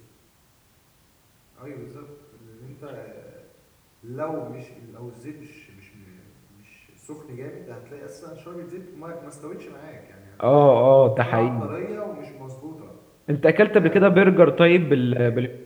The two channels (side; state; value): both; identical; correlation 1.00